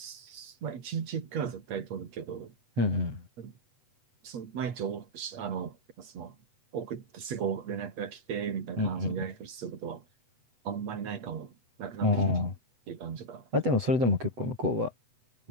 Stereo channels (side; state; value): left; late; 8.4 ms